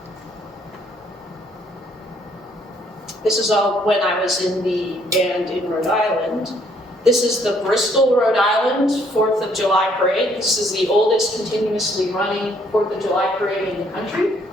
This is all when I was in the band in Rhode Island. This is the Bristol, Rhode Island 4th of July parade. This is the oldest continuously running 4th of July parade in the country.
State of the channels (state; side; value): normal; both; correlation 0.66